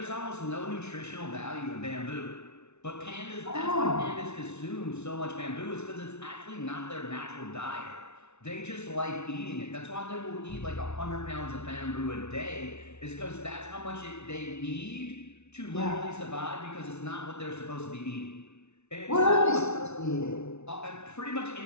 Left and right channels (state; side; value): late; right; 0.81 ms